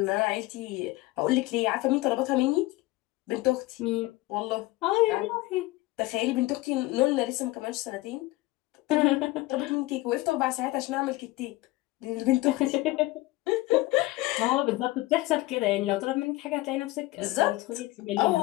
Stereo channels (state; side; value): quieter; right; 19.4 dB